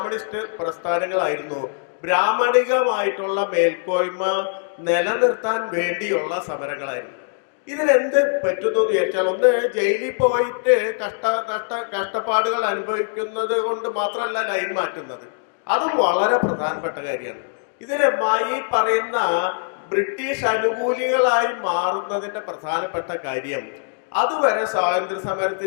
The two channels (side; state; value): right; silent; digital silence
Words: പ്രസ്ഥാനങ്ങളായിരുന്നു. ബ്രാഹ്മണികമായിട്ടുള്ള മേൽക്കോയ്മ നിലനിർത്താൻ വേണ്ടിയുള്ള സമരങ്ങളായിരുന്നു. ഇതിനെന്ത് പറ്റുന്നു എന്ന് വിചാരിച്ചാൽ, ഒന്ന് ജയിലിൽ പോയിട്ട് കഷ്ടപ്പാടുകൾ അനുഭവിക്കുന്നത് കൊണ്ട് മാത്രമല്ല ലൈൻ മാറ്റുന്നത്, അതും വളരെ പ്രധാനപ്പെട്ട കാര്യമാണ്. ഇതിന് ഈ പറയുന്ന ബ്രിട്ടീഷ് അനുകൂലികളായി മാറുന്നതിന്റെ പ്രധാനപ്പെട്ട കാര്യം, അതുവരെ സ്വാതന്ത്ര്യ